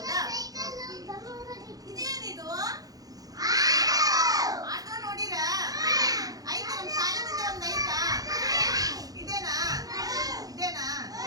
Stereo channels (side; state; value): left; late; 0.18 ms